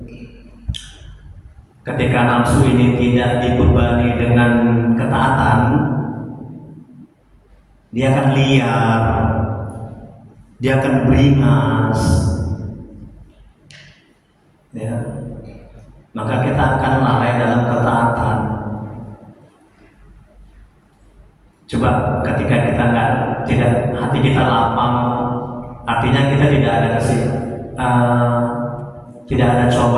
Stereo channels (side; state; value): both; identical; correlation 1.00